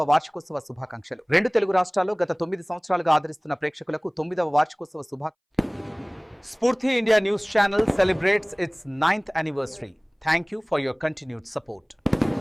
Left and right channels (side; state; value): both; identical; correlation 1.00